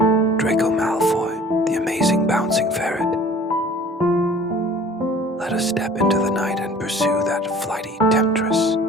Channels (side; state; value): both; normal; correlation 0.48